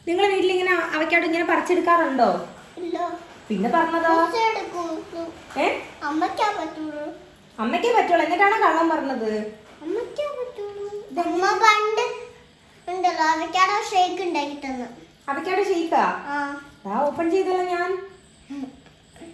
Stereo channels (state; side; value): identical; both; correlation 1.00